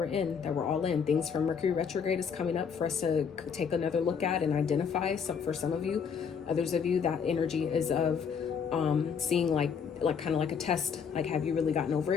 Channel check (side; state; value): right; quieter; 6.7 dB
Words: in, that we're all in. Things from Mercury retrograde is coming up for us to take another look at and identify. Some, for some of you, others of you, that energy is of seeing like kind of like a test, like, have you really gotten over